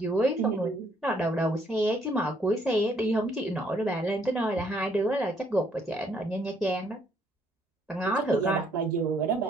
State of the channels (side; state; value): both; normal; correlation 0.67